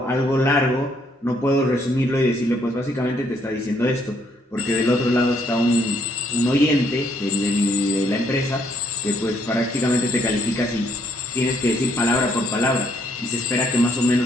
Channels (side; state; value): both; normal; correlation 0.68